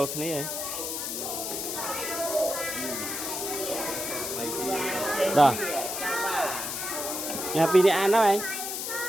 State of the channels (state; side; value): noise; left; hiss, 4 dB below the sound